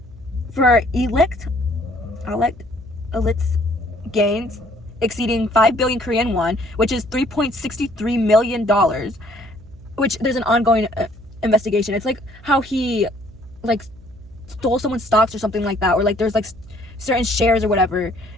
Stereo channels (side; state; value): right; noise; hum, 21 dB below the sound